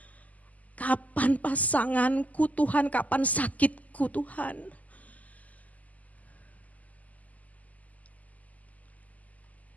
kapan pasanganku Tuhan, kapan sakitku Tuhan.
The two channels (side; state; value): right; late; 0.076 ms